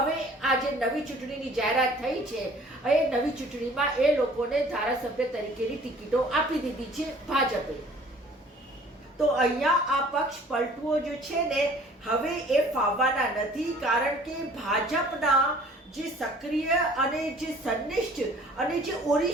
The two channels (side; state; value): both; normal; correlation 0.52